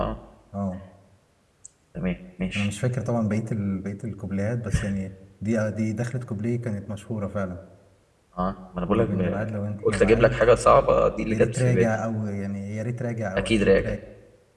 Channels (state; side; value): identical; both; correlation 1.00